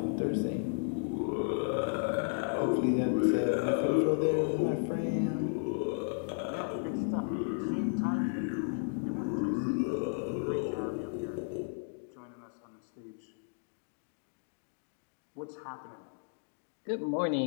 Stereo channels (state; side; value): silent; right; digital silence